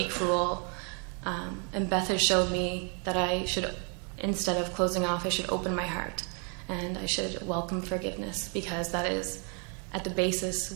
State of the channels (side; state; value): left; quieter; 38.0 dB